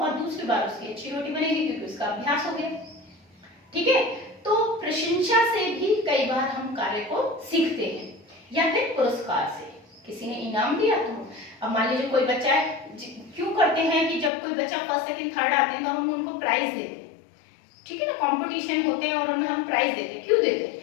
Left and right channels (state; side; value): drops out; right; at 14.3 s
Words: दूसरी बार उसकी अच्छी रोटी बनेगी, क्योंकि उसका अभ्यास हो गया, ठीक है। तो प्रशंसा से भी कई बार हम कार्य को सीखते हैं, या फिर पुरस्कार से, किसी ने इनाम दिया तो। अब मान लीजिए कोई बच्चा है, क्यों करते हैं कि जब कोई बच्चा फर्स्ट सेकंड थर्ड आते हैं तो हम उनको प्राइज देते हैं, ठीक है ना, कंपटीशन होते हैं और उनमें हम प्राइज देते हैं। क्यों देते